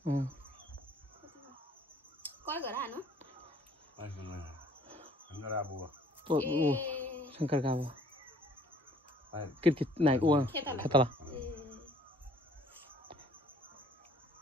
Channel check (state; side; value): normal; both; correlation 0.57